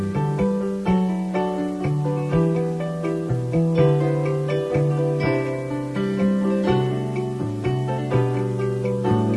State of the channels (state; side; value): identical; both; correlation 1.00